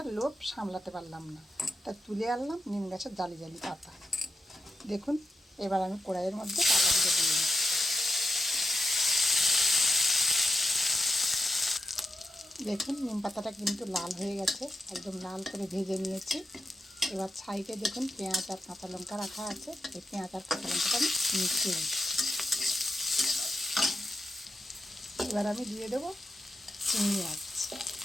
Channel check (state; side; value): normal; both; correlation 0.88